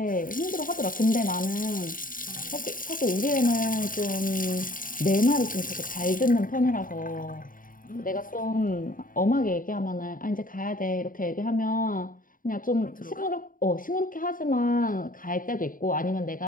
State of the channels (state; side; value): late; right; 0.40 ms